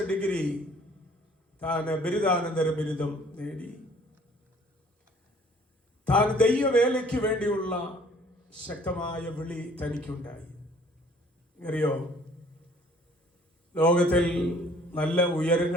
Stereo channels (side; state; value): both; normal; correlation 0.55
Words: ഡിഗ്രി താൻ ബിരുദാനന്തര ബിരുദം നേടി. താൻ ദൈവവേലയ്ക്ക് വേണ്ടിയുള്ള ശക്തമായ വിളി തനിക്കുണ്ടായി. അറിയോ, ലോകത്തിൽ നല്ല